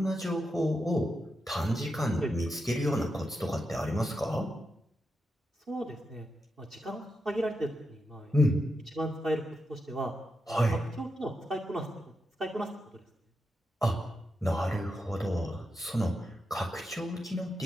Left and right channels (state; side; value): normal; both; correlation 0.86